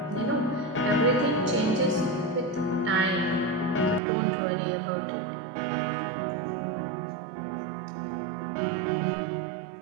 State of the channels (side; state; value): left; drops out; at 4.0 s